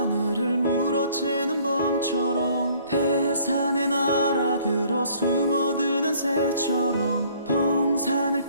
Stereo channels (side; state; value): both; inverted; correlation -0.58